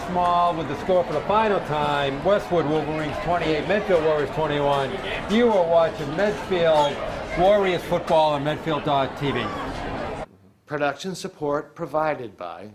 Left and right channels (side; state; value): both; identical; correlation 1.00